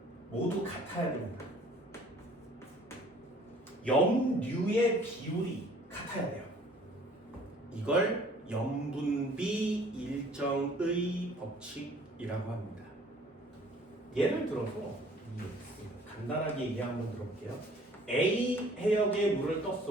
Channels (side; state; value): both; normal; correlation 0.54